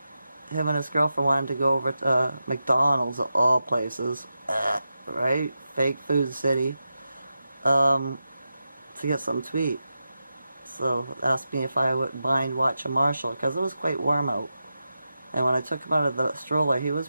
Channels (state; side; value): inverted; both; correlation -0.89